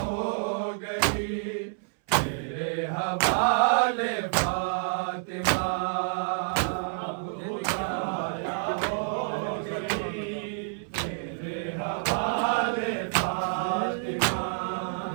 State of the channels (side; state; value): left; silent; 59 dB below the other